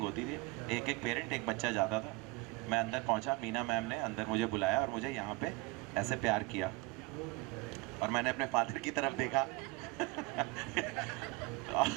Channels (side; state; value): left; quieter; 23.1 dB